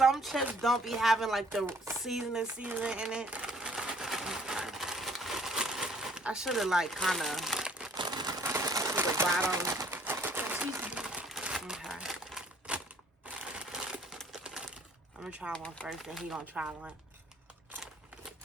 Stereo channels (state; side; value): normal; both; correlation 0.59